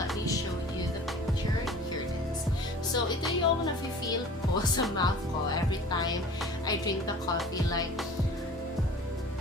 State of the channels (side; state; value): both; normal; correlation 0.44